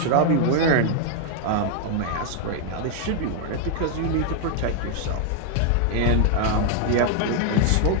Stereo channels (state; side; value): different; both; correlation 0.00